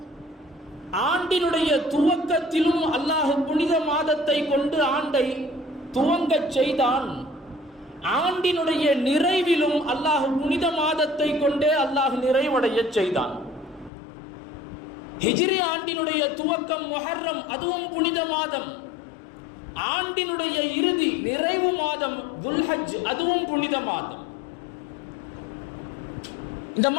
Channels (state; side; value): drops out; right; at 13.9 s